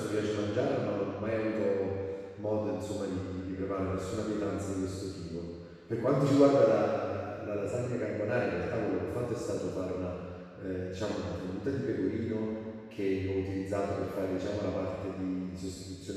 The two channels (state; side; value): identical; both; correlation 1.00